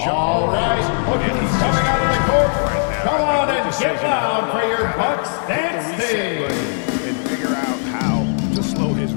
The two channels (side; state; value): right; silent; digital silence